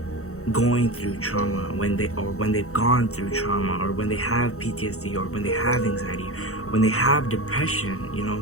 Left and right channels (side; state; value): right; late; 0.64 ms